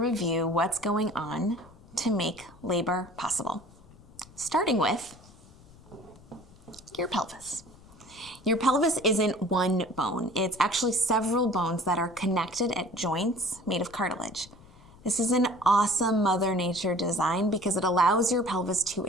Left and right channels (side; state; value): left; noise; rumble, 24 dB below the sound